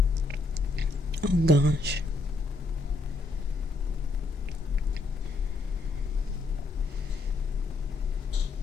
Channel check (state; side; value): quieter; right; 3.3 dB